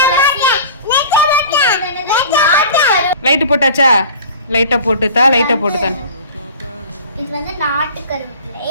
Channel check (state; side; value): inverted; both; correlation -0.41